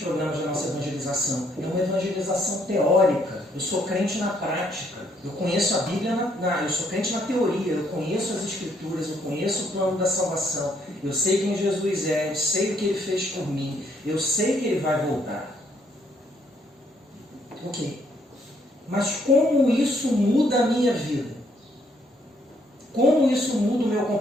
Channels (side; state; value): both; normal; correlation 0.69